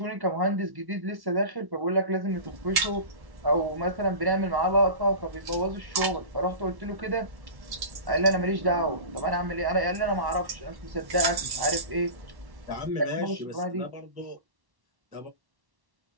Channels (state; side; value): late; left; 1.1 ms